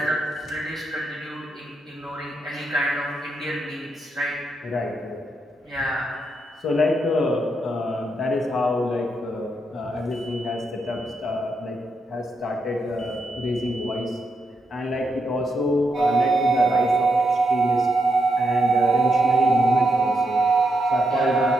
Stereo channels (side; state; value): both; normal; correlation 0.82